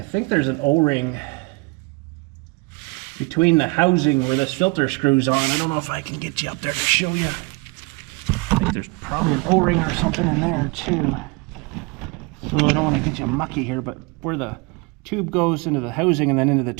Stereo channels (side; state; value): left; quieter; 28.3 dB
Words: there's an O-ring between the housing where this filter screws on. I don't know if I can get you up there to show you. I think there's probably an O-ring or something in there too. So I don't want to get you mucky here, but where the tube goes into the housing and then into the